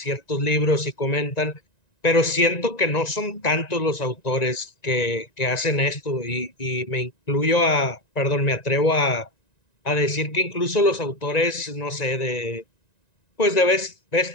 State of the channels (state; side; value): late; right; 1.9 ms